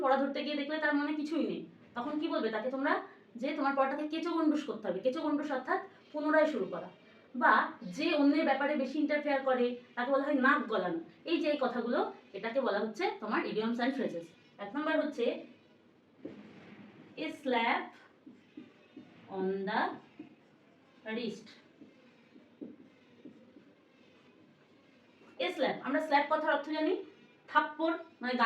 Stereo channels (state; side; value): identical; both; correlation 1.00